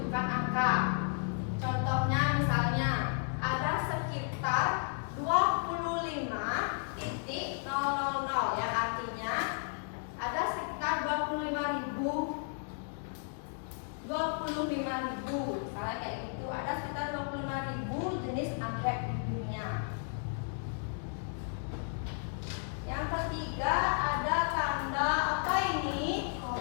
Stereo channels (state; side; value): silent; right; 55 dB below the other